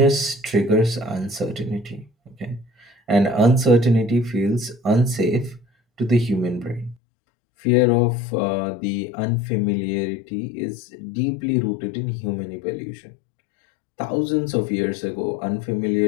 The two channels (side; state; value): right; drops out; at 7.0 s